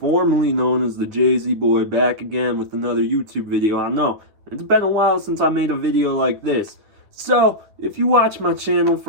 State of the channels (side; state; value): left; late; 9.7 ms